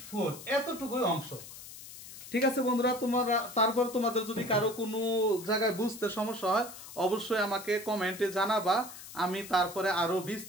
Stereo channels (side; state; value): left; noise; hiss, 14 dB below the sound